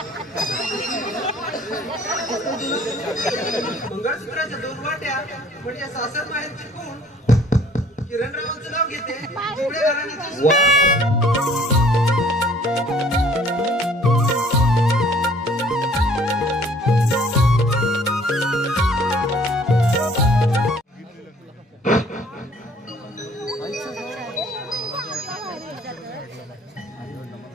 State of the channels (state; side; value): normal; both; correlation 0.56